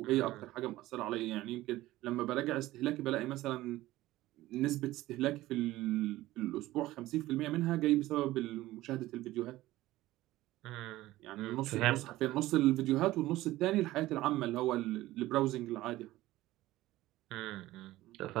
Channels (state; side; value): quieter; left; 16.7 dB